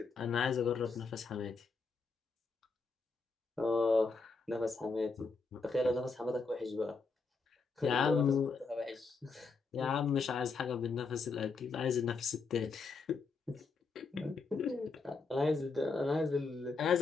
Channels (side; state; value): right; quieter; 4.4 dB